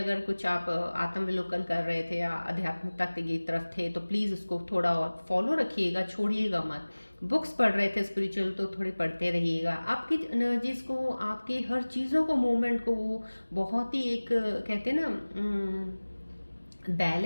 कुछ आप आत्मविलोकन कर रहे थे या आध्यात्मिकता की तरफ थे तो प्लीज़ उसको थोड़ा और फॉलो रखिएगा, छोड़िएगा मत। बुक्स पढ़ रहे थे स्पिरिचुअल तो थोड़ी पढ़ते रहिएगा। आपकी एनर्जीज को, आपकी हर चीज़ों को, मूवमेंट को वो बहुत ही एक कहते हैं ना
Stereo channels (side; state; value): both; inverted; correlation -1.00